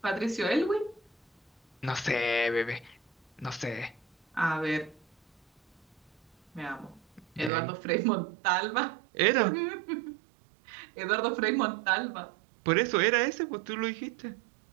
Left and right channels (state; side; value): drops out; left; at 7.5 s